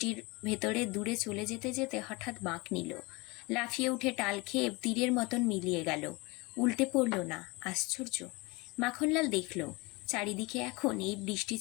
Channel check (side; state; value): right; quieter; 25.3 dB